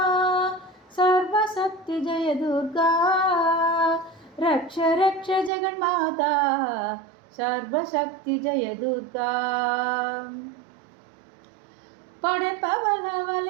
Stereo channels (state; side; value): drops out; left; at 5.5 s